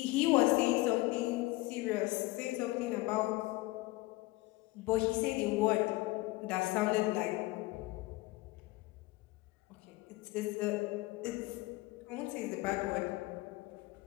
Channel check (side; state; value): right; quieter; 20.5 dB